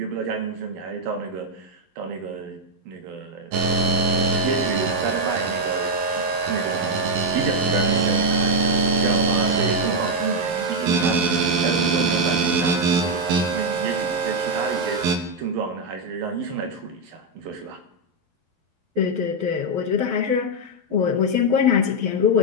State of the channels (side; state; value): left; late; 12 ms